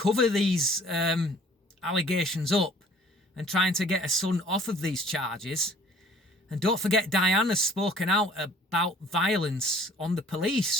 these allegations up and trying to get her son off of these charges. And don't forget, Diane has spoken out about violence on the police.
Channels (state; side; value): normal; both; correlation 0.54